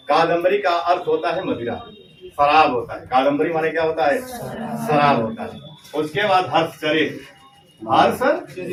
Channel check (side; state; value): both; identical; correlation 1.00